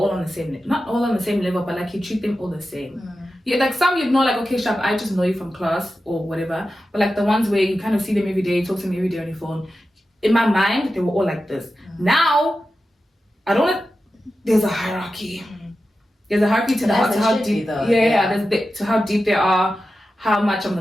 on the same, not all on the same level, but like you treat them all the same. Yeah, like some you'd know, like, okay, Shab, I just know you from class or whatever. But like the ones where you kind of see them every day, talk to them every day on your phone. In my mind, they were all like this. Now, there's a hierarchy. There's a hierarchy to how deep. To how deep they are, how much I'm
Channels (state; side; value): normal; both; correlation 0.92